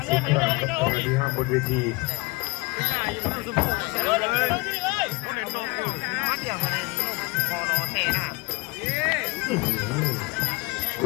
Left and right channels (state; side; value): quieter; right; 25.1 dB